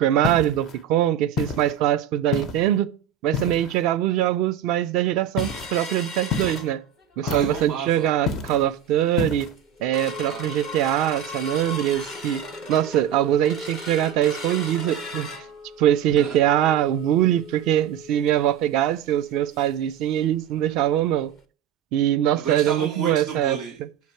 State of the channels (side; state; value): left; quieter; 9.5 dB